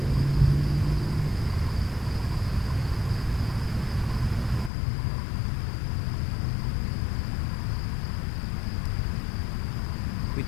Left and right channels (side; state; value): right; drops out; at 4.7 s